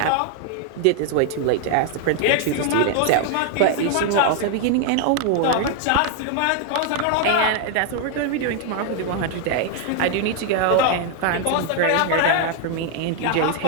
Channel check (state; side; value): different; both; correlation 0.00